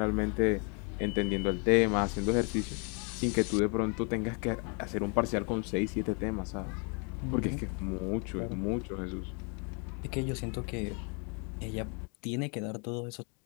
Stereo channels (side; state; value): right; quieter; 37.0 dB